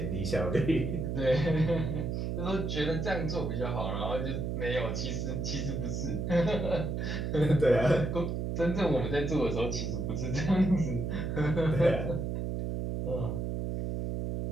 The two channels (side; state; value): right; noise; hum, 2 dB below the sound